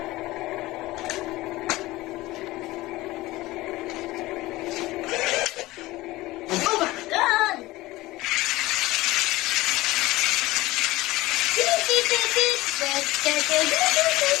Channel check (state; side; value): quieter; right; 18.8 dB